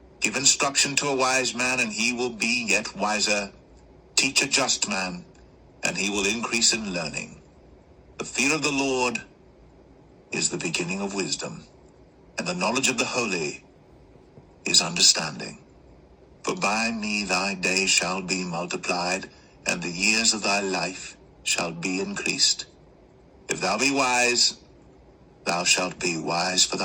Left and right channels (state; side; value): identical; both; correlation 1.00